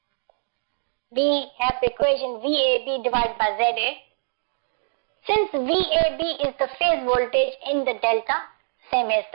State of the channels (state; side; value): silent; left; digital silence